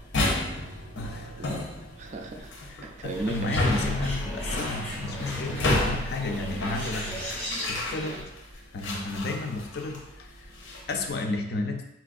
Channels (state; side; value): normal; both; correlation 0.51